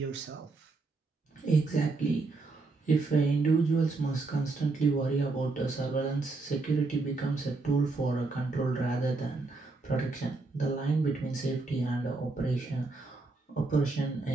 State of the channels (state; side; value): quieter; left; 3.6 dB